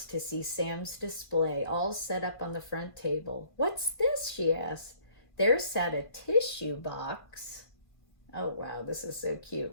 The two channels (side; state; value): right; late; 1.5 ms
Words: to see Sam's display, all set up on the front table. "What's this?" she asked. There sat a tissue box. Oh, wow, this is so